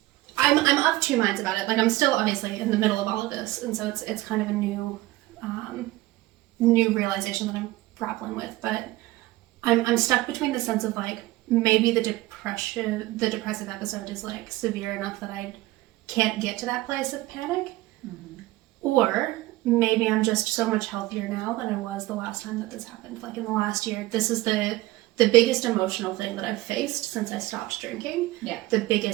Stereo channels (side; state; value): left; quieter; 18.0 dB